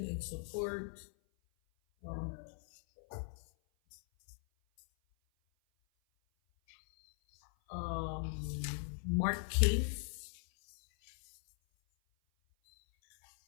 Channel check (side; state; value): right; silent; 52 dB below the other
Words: in support. Mark Cave.